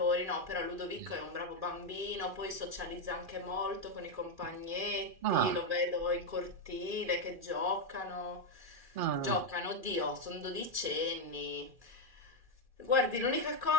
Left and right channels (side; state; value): left; late; 2.4 ms